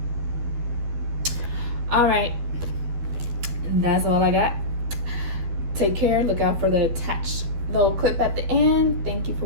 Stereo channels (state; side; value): late; left; 12 ms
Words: All right, that's all I got. Take care. Look out for the attached little clip at the end. Thank you for